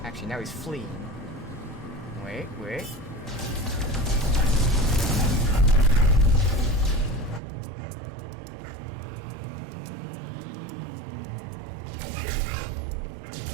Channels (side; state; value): left; drops out; at 7.4 s